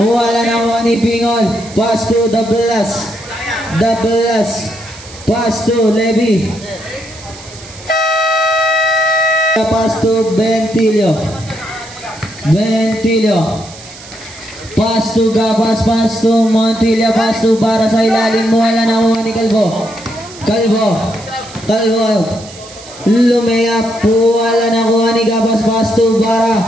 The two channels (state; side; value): noise; right; hiss, 18 dB below the sound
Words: na kuha ni Pingol. Pass to the blast. Pass to Levy. Pass to Bentilio. Pass to Gapas, pass to Montilla, pass to Bara sa ilalim. Wala na kuha ni Kalbo. Lumayap, wala na kuha ni Gapas, pass to Bara.